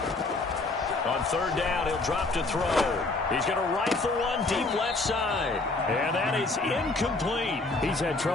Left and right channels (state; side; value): quieter; right; 3.3 dB